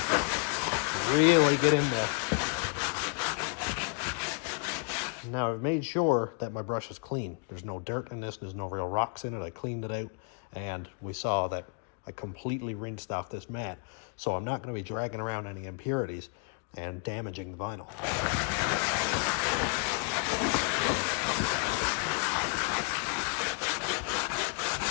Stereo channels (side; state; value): right; quieter; 36.3 dB